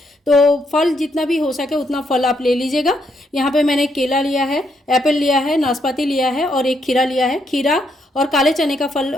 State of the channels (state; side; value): normal; both; correlation 0.76